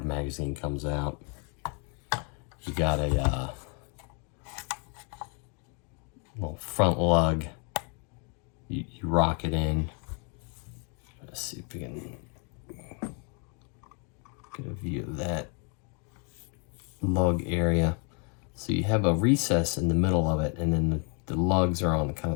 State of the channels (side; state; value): right; quieter; 37.0 dB